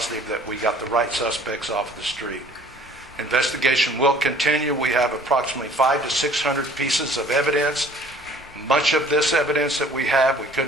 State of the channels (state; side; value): normal; both; correlation 0.53